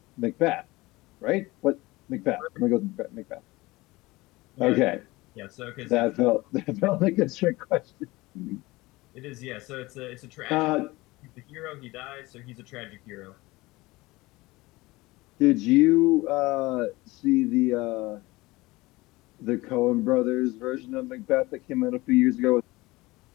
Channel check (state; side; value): quieter; right; 20.9 dB